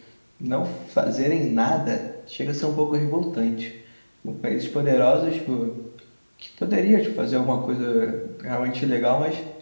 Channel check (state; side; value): inverted; both; correlation -1.00